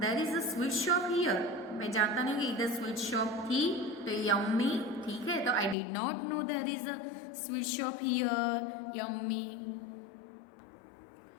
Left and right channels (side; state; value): right; drops out; at 5.8 s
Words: is a sweet shop here. मैं जानता नहीं कि इधर स्वीट शॉप थी. तो यम्मी. ठीक है. तो I did not know there is a sweet shop here. Yummy.